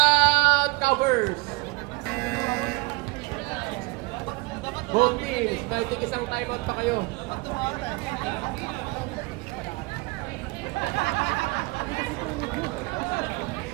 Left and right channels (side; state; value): left; quieter; 25.4 dB